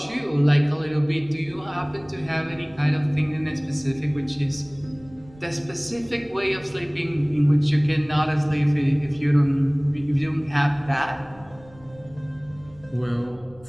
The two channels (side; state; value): right; noise; rumble, 24 dB below the sound